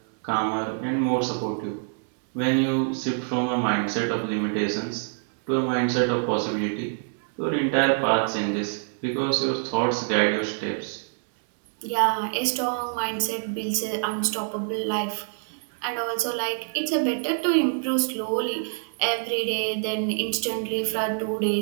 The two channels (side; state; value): left; silent; 61 dB below the other